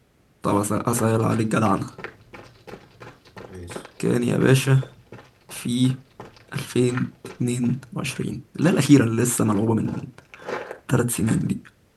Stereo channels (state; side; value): identical; both; correlation 1.00